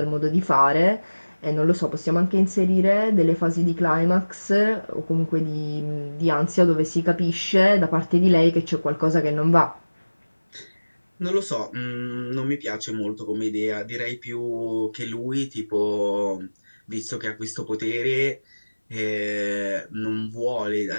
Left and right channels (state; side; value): inverted; both; correlation -1.00